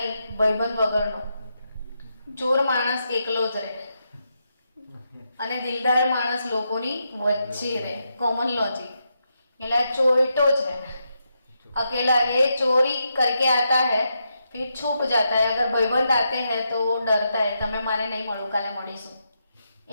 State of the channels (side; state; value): both; inverted; correlation -0.83